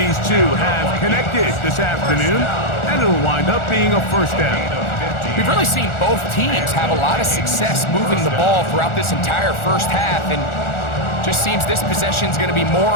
two have connected this afternoon, and it'll wind up being a first down. We've really seen both teams have a lot of success moving the ball throughout this entire first half, and just seems this possession's going to be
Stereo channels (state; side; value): late; right; 1.4 ms